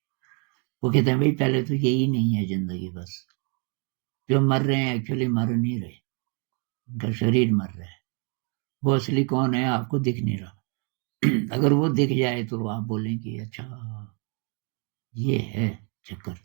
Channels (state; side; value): quieter; left; 37.1 dB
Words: वो कहते हैं भाई पहले तो यही नहीं है जिंदगी, बस जो मर रहे हैं एक्चुअली मर नहीं रहे, उनका शरीर मर रहा है। वो असली कौन है आपको दिख नहीं रहा। अगर वो दिख जाए तो आप बोलेंगे अच्छा ये है चक्कर।